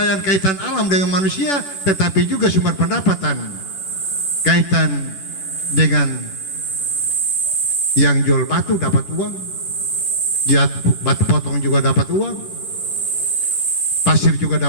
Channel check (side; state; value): right; late; 10 ms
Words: kaitan alam dengan manusia, tetapi juga sumber pendapatan kaitan dengan yang jual batu dapat uang, batu potong juga dapat uang, pasir juga